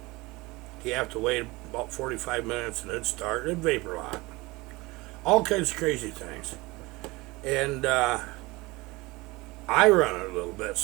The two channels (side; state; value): left; quieter; 22.4 dB